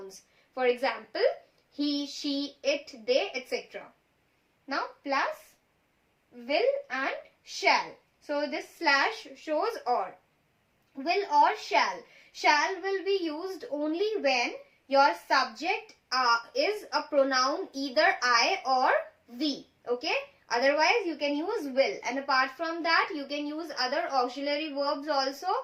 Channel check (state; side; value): identical; both; correlation 1.00